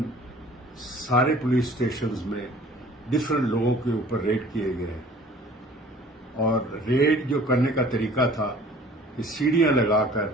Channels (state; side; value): normal; both; correlation 0.50